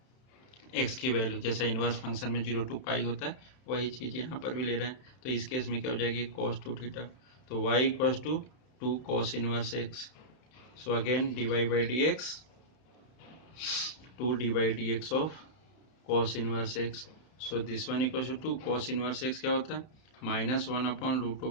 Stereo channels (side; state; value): right; late; 31 ms